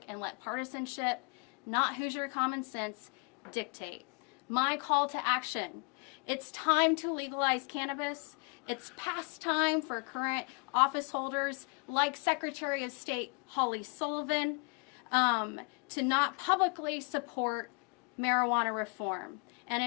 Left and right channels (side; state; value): right; quieter; 34.6 dB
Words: and let partisanship, not Hoosier common sense, dictate. My call to action: it's time to legalize cannabis. It's past time for current office holders like Secretary of State Holly Sullivan to not publicly support marijuana reform. And